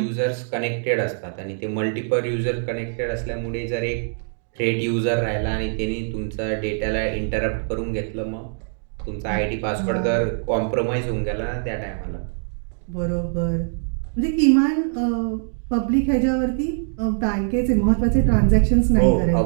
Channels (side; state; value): left; silent; digital silence